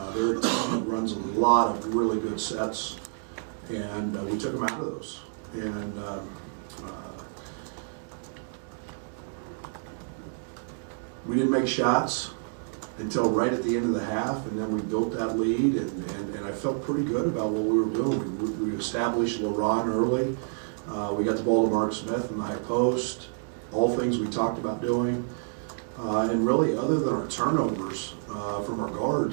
Their team runs a lot of really good sets, and we took them out of those. And we didn't make shots until right at the end of the half, and then we built that lead, and I felt pretty good about what we were doing. We established LeBron early. We got the ball to Mark Smith in the high post, all things we talked about doing. And really, other than our turnovers from our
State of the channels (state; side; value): silent; left; digital silence